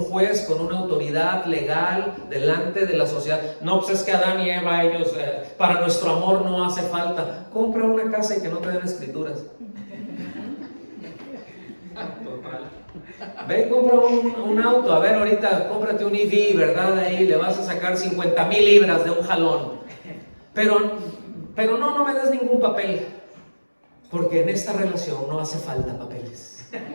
juez, con una autoridad legal delante de la sociedad. No, pues es que Adán y Eva, ellos, para nuestro amor no hace falta. Compra una casa y que no te den escrituras. Ve y compra un auto. A ver, ahorita cómprate un EV, ¿verdad? Ahí le vas a sacar 50,000 libras de un jalón. Pero no me des ningún papel. Porque en esta relación no hace falta papeles.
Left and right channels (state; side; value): inverted; both; correlation -1.00